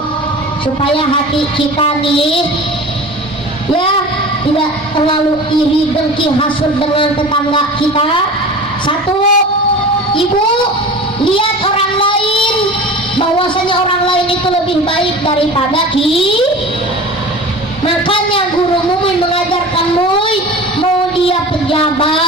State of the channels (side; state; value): both; normal; correlation 0.36